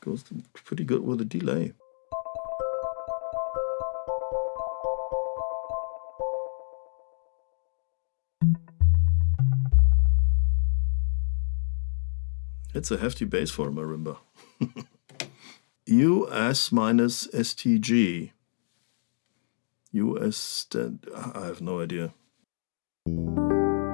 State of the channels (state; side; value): silent; right; digital silence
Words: goes pretty good with a delay. It's a hefty bass for a marimba. US minus STG. US, I have no idea.